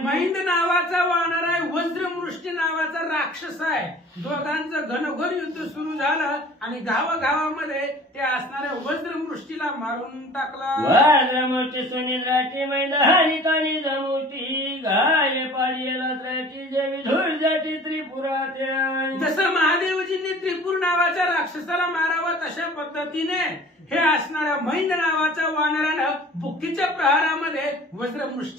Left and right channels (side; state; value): both; normal; correlation 0.46